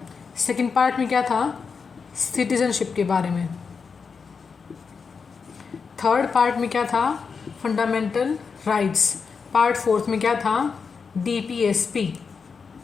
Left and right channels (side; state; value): right; quieter; 5.5 dB